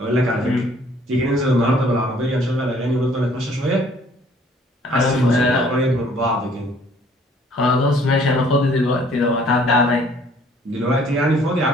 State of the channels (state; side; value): normal; both; correlation 0.59